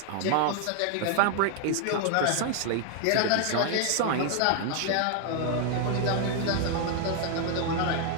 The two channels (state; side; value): different; both; correlation 0.00